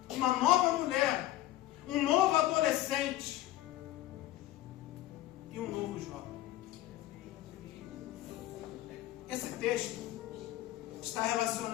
uma nova mulher, um novo adolescente e um novo jovem. Esse texto está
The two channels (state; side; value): quieter; right; 14.9 dB